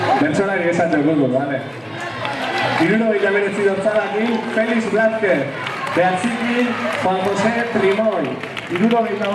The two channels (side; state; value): both; identical; correlation 1.00